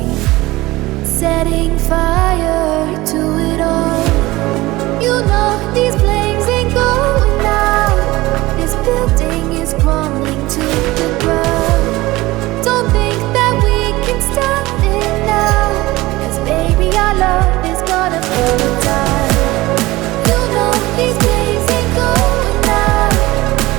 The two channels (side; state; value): left; quieter; 19.4 dB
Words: setting fire to it all. You know these flames ain't going out. This building is crumbling to the ground. Don't think that we can stop it now, 'cause baby our love is gonna burn it down. You know these flames ain't going out.